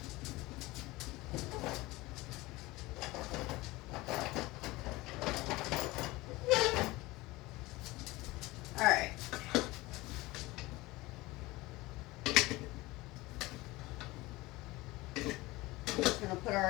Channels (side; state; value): right; quieter; 20.6 dB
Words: All right. We're just going to put